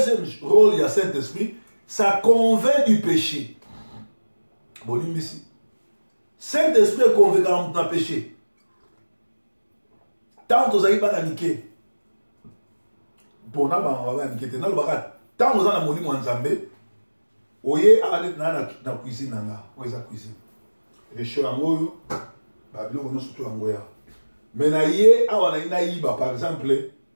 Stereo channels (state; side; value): inverted; both; correlation -1.00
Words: rôle, il y a Saint-Esprit, ça convainc du péché. Bon, ici. Saint-Esprit est convaincant dans le péché. Tant que vous avez pas niqué, pour nous, on va niquer. Tant que vous avez moli mon Nzambe, oye aller dans la cuisine nanga, oye la cuisine. Les choses en goyo, babilo on surtout en goya. Mais na ye awa na iba par exemple